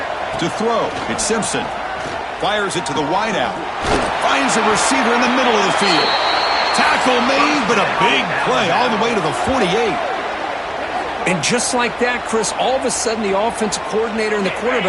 To throw, it's Simpson. Fires it to the wideout. Finds a receiver in the middle of the field. Tackle made, but a big play all the way to the 48. And just like that, Chris, all of a sudden the offensive coordinator and the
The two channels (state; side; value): identical; both; correlation 1.00